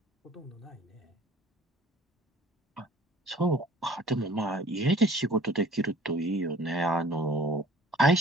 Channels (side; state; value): both; normal; correlation 0.50